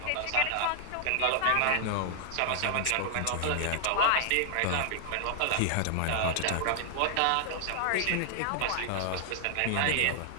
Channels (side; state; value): both; different; correlation 0.00